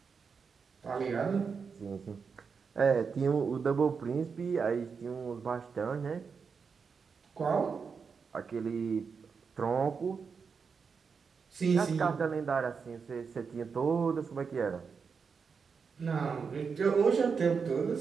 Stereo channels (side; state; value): left; quieter; 5.7 dB